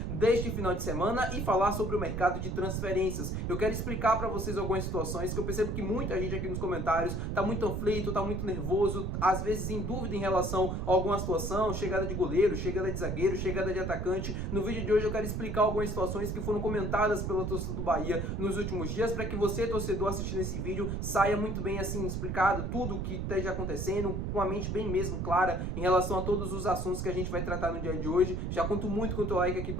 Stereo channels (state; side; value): noise; right; rumble, 2 dB below the sound